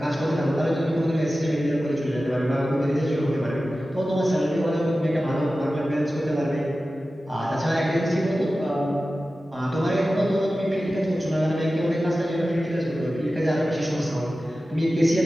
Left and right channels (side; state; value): both; normal; correlation 0.95